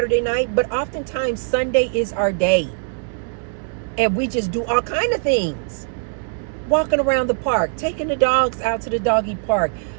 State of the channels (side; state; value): left; silent; digital silence